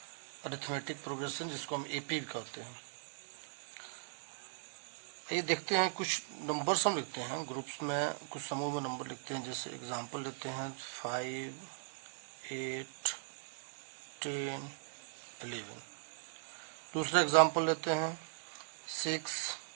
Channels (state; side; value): silent; left; digital silence